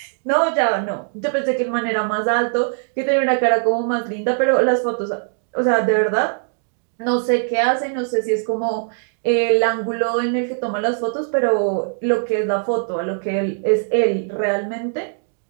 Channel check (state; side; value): silent; left; digital silence